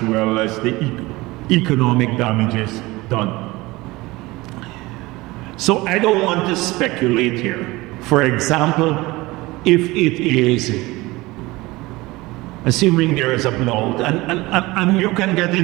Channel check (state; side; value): quieter; left; 20.9 dB